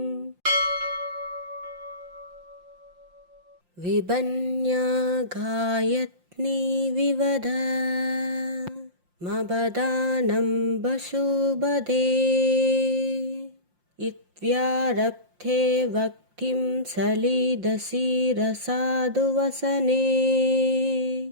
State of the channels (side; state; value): left; late; 5.7 ms